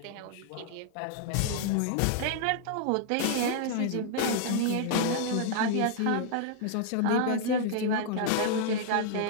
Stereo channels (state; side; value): different; both; correlation -0.01